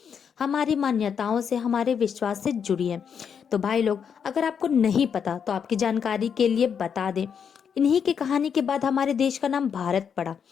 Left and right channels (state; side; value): quieter; right; 7.2 dB